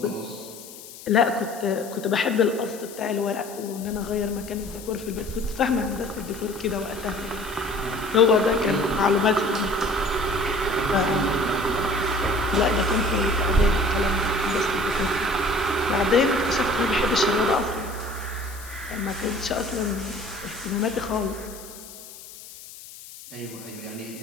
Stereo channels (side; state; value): left; noise; hiss, 16 dB below the sound